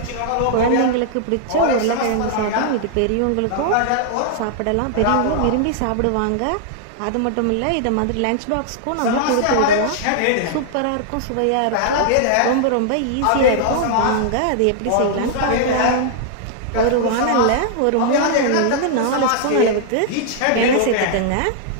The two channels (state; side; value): different; both; correlation -0.01